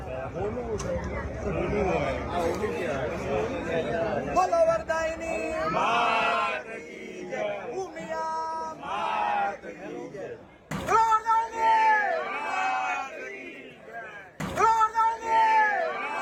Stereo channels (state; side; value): identical; both; correlation 1.00